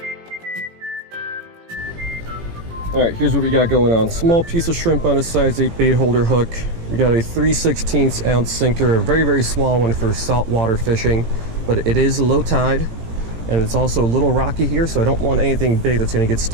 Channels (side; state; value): left; late; 18 ms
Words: Alright, here's what we got going on. Small piece of shrimp on a size 8 bait holder hook. We got a 3/16 ounce sinker, a very, very small one for saltwater fishing, but it is low tide, and it's also a little rocky here, so I don't want anything big that's going to get